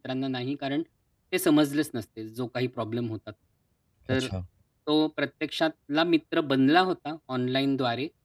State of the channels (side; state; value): both; identical; correlation 1.00